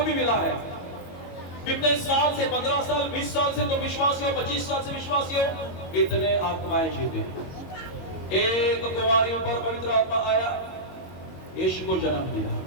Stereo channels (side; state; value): right; late; 22 ms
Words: भी मिला है। कितने साल से, 15 साल, 20 साल से तुम विश्वासी हो, 25 साल से विश्वासी हो, इतने आत्माएं जीते। एक कुंवारी पर पवित्र आत्मा आया, यीशु को जन्म दिया।